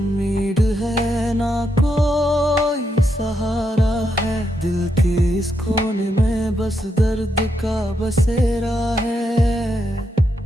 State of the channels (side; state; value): both; normal; correlation 0.81